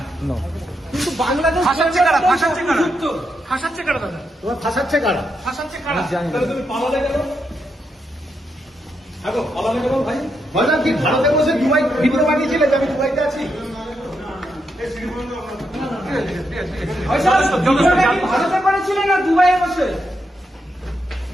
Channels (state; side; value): normal; both; correlation 0.82